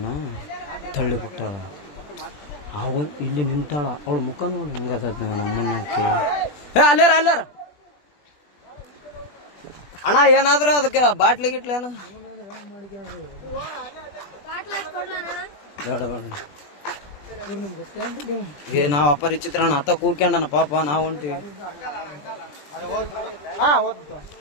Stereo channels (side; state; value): right; late; 20 ms